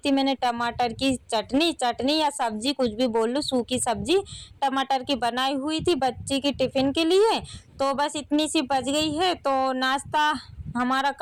मैंने टमाटर की चटनी या सब्जी, कुछ भी बोल लो, सूखी सब्जी टमाटर की बनाई हुई थी बच्ची की टिफ़िन के लिए। तो बस इतनी सी बच गई है, तो नाश्ता हमारा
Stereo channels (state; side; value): identical; both; correlation 1.00